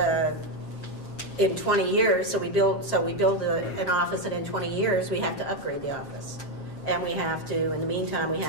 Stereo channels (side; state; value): right; late; 7.5 ms